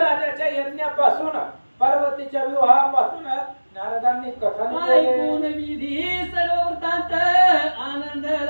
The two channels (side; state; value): both; inverted; correlation -1.00